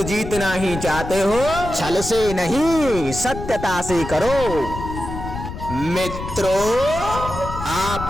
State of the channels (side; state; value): left; noise; rumble, 9 dB below the sound